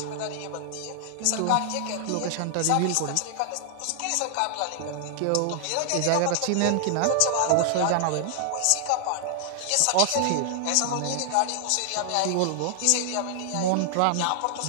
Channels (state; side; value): different; both; correlation 0.00